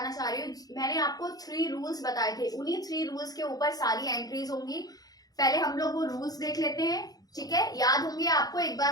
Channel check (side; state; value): right; late; 0.18 ms